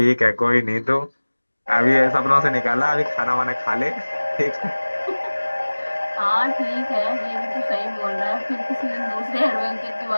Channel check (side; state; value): both; inverted; correlation -1.00